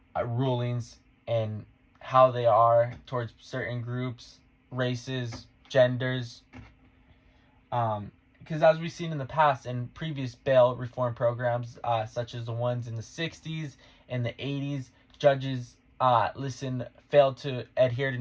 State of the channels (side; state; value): both; identical; correlation 1.00